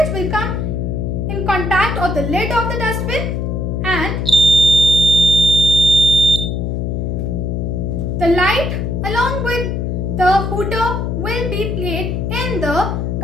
will come in contact of the lid of the dustbin and the light along with the hooter will be played in the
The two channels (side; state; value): left; noise; hum, 1 dB below the sound